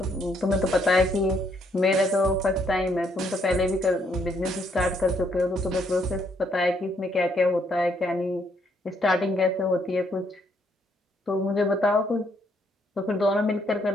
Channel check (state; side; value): normal; both; correlation 0.71